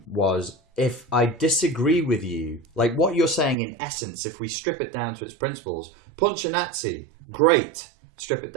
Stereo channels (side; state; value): left; drops out; at 3.6 s